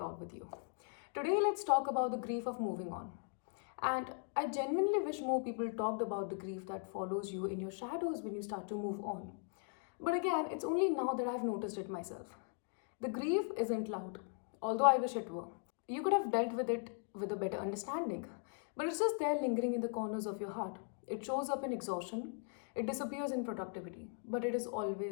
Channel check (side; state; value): right; silent; 52 dB below the other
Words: with you. Today, let's talk about the grief of moving on. And I genuinely wish more people talked about the grief that follows you in your shadows when you start to move on. But again, it's only now that I've noticed it myself. The grief isn't loud, although I wish it were. You could have dealt with it with a better understanding, but it's just there lingering in the corners of your heart. It shows up in exhaustion, it disappears in productivity, but it is